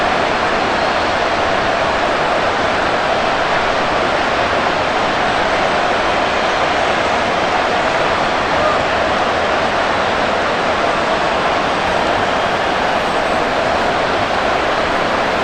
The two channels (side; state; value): both; identical; correlation 1.00